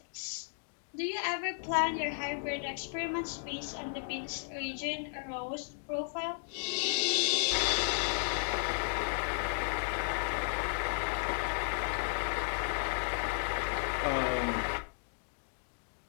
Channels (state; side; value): silent; right; 55 dB below the other